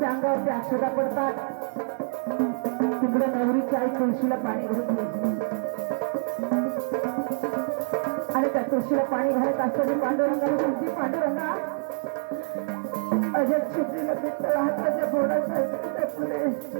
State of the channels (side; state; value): left; silent; 61 dB below the other